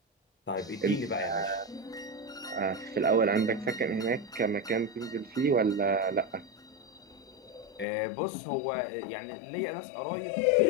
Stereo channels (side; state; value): right; drops out; at 7.9 s